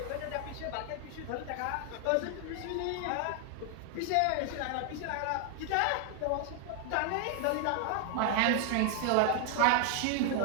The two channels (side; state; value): both; different; correlation 0.00